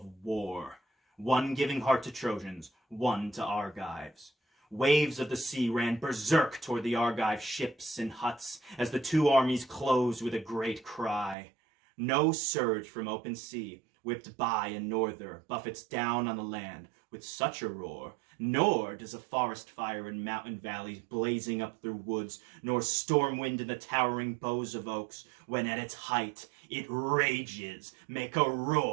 war, one giving heart to Trojans, one to Argives. Waves of the sea ran berserk toward the Argive ships and huts as the two armies closed with a great cry. No surge from open sea, whipped by a norther, buffets down on the land with such a roar, nor does a forest fire in mountain valleys blazing up through woods, nor storm wind in the towering boughs of oaks, when at its height it rages, make a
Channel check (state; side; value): drops out; left; at 11.4 s